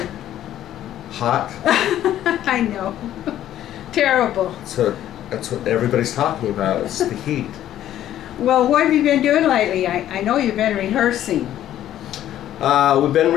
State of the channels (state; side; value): quieter; right; 12.1 dB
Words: Hot. I know. Terrible. So that's what everybody's talking about. It's the heat. Well, what have you been doing lately? I know you've been rehearsing. We've been